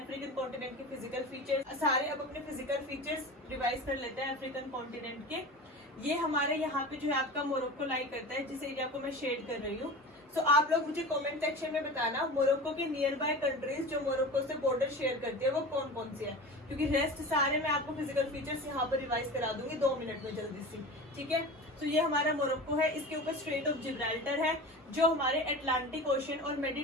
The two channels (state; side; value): normal; both; correlation 0.32